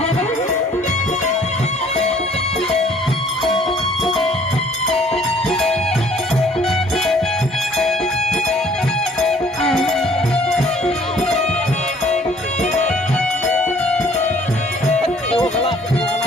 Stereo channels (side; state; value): both; normal; correlation 0.57